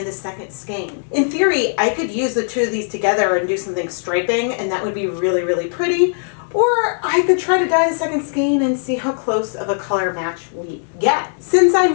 the second skein. In theory, I could use the two of these together and do something striping, and that would be really, really pretty. Or I could try to dye the second skein and see how close of a color match we get. Since I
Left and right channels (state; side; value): silent; right; digital silence